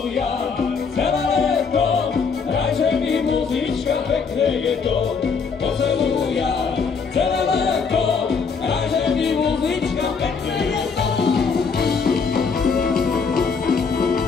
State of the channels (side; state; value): right; quieter; 5.5 dB